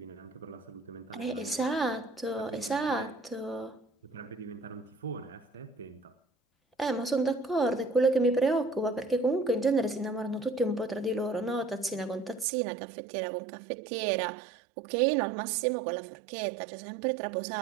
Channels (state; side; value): drops out; left; at 12.5 s